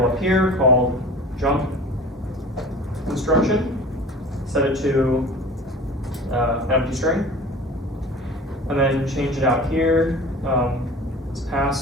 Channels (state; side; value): normal; both; correlation 0.40